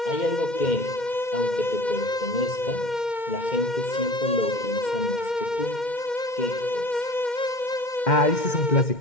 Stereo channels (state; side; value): late; right; 2.1 ms